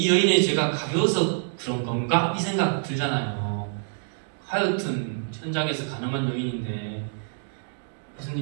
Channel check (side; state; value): left; silent; digital silence